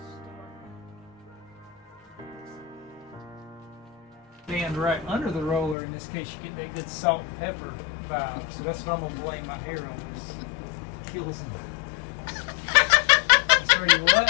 Stand right under the roller. In this case, you get that good salt and pepper vibe. So that's what I'm gonna blame my hair on. Is kills and. Sorry,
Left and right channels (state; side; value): drops out; right; at 5.8 s